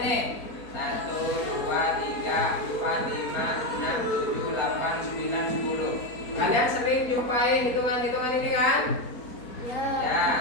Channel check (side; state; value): right; late; 4.3 ms